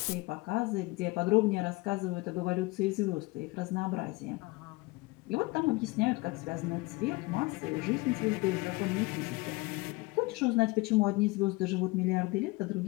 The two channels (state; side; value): quieter; right; 23.8 dB